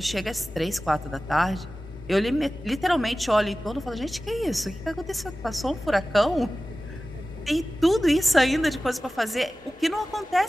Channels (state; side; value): normal; both; correlation 0.96